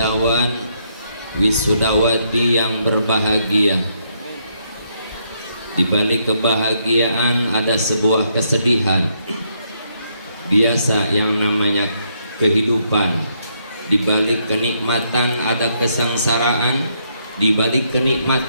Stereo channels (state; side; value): inverted; both; correlation -0.75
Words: wisudawati yang berbahagia. Di balik kebahagiaan ada sebuah kesedihan. Biasa yang namanya kehidupan. Di balik kenikmatan ada kesengsaraan, di balik